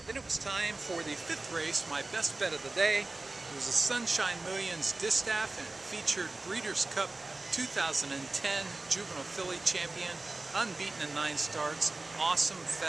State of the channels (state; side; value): quieter; left; 3.2 dB